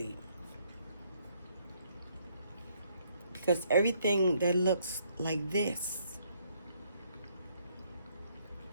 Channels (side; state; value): both; inverted; correlation -0.69